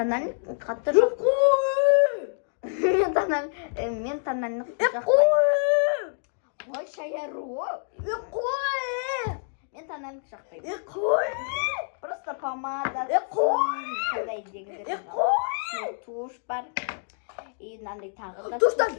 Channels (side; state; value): right; silent; 60 dB below the other